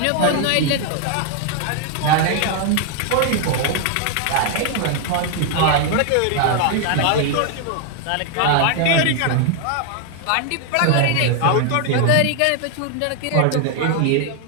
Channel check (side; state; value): both; different; correlation 0.00